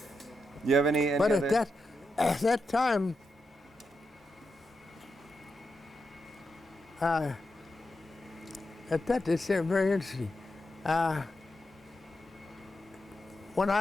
You have any But other? at that time, it's very interesting. When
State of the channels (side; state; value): both; normal; correlation 0.87